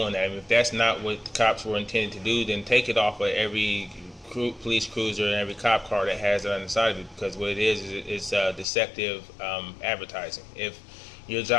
that. I mean, if that's not what the cops were intended to do, then take it off of every police cruiser and every cop car that has it on the side of it, because what it is it's deceptive advertising. If your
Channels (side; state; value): right; drops out; at 8.7 s